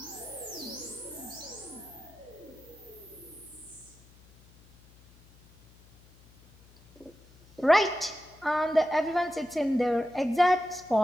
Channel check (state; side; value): noise; left; hum, 26 dB below the sound